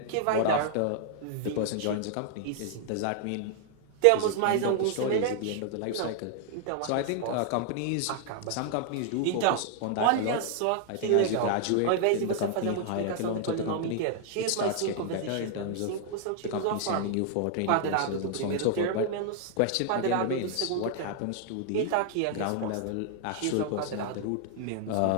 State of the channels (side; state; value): both; different; correlation 0.00